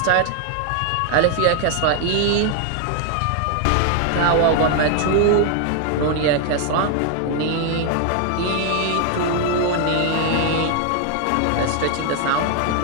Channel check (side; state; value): both; different; correlation 0.00